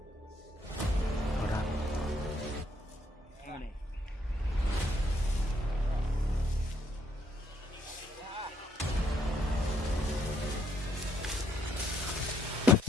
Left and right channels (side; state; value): both; normal; correlation 0.72